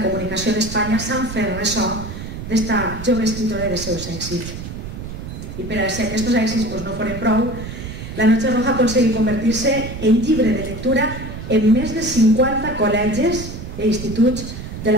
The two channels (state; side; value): noise; right; rumble, 9 dB below the sound